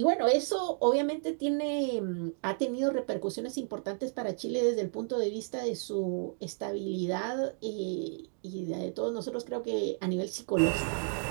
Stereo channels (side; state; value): left; silent; 56 dB below the other